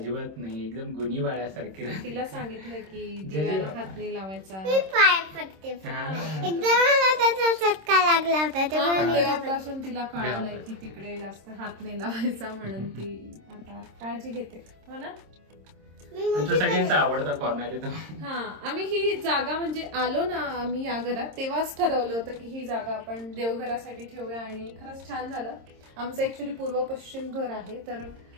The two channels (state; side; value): late; left; 26 ms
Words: नाही, एकदम गुणी बाळासारखी राहते. तिला सांगितलं की दिव्याला हात नाही लावायचा. मी पाय पडते. एकदा मला त्याचा चटका लागला होता तेव्हापासून तिला कळलंय की तिकडे जास्त हात नाही लावायचा, म्हणून ती आता काळजी घेते हो ना. सगळ्यांचा आवडता कॉर्नर आहे तो. हा, आम्ही ही जागा म्हणजे आलो ना आम्ही या घरात तेव्हाच ठरवलं होतं की ही जागा आपण देवघरासाठी ठेवूया, आणि खरंच छान झालं. आमचं ऍक्च्युली पूर्व पश्चिम घर आहे, तर